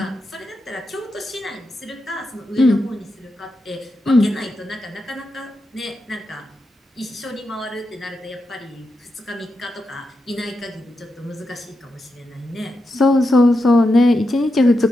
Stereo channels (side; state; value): both; normal; correlation 0.87